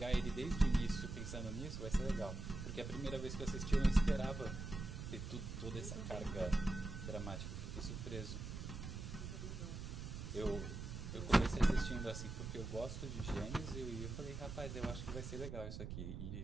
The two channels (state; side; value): noise; right; rumble, 6 dB below the sound